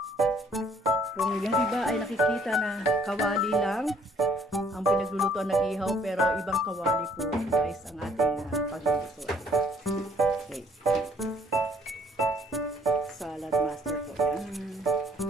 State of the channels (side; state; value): both; normal; correlation 0.62